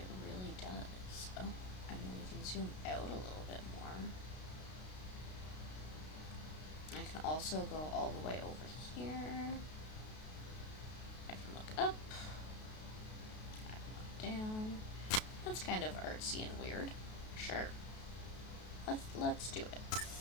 really does. Oh, I mean, we can zoom out a little bit more. I can also go all the way over here. I can look up. I can look down. That's kind of artsy and weird. Sure. Let's do it.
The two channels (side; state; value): right; late; 32 ms